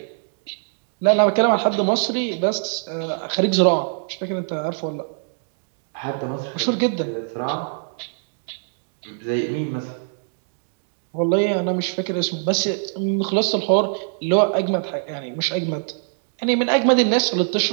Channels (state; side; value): silent; left; digital silence